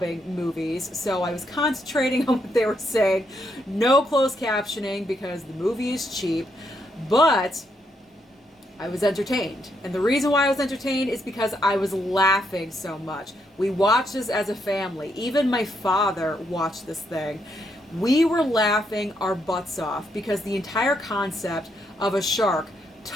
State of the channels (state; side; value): normal; both; correlation 0.77